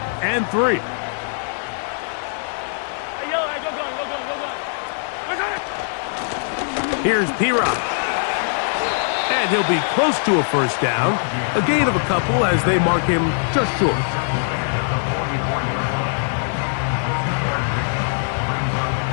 and 3. Hey, Yellow, go gun. Here's P-Rock. And he'll be close to a first down. A gain of a couple as they mark him just short.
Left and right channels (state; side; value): silent; right; digital silence